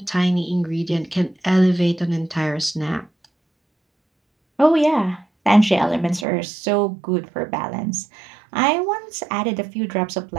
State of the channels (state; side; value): drops out; left; at 6.2 s